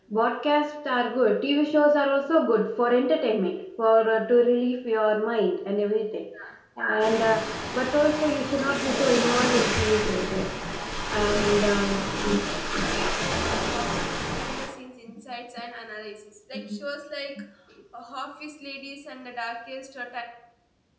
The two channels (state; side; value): identical; both; correlation 1.00